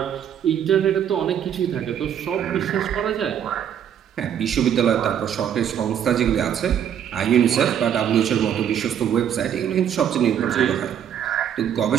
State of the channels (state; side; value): quieter; left; 9.2 dB